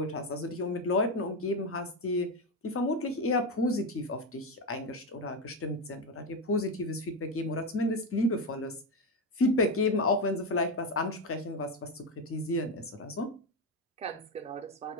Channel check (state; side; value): normal; both; correlation 0.11